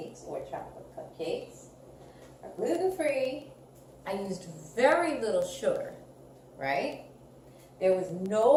or chocolate cupcakes are gluten-free. I used very little sugar, right? There was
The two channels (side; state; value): both; identical; correlation 1.00